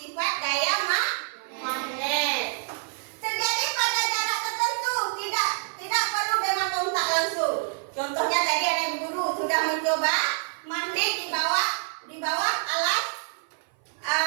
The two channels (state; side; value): silent; left; 55 dB below the other